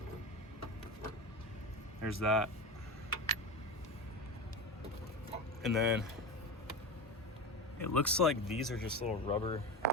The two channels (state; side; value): normal; both; correlation 0.22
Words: There's that. And then it looks like these are just little rubber